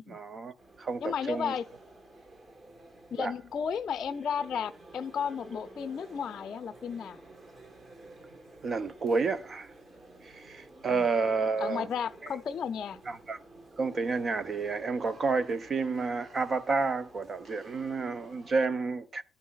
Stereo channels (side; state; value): both; normal; correlation 0.79